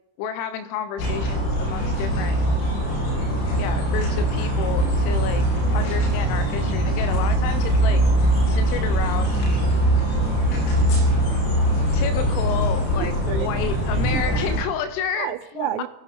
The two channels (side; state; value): right; late; 31 ms